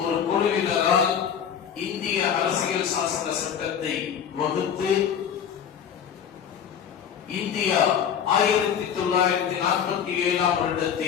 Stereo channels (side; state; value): right; quieter; 8.2 dB